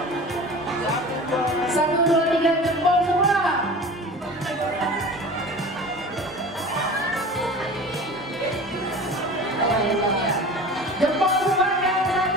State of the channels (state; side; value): normal; both; correlation 0.37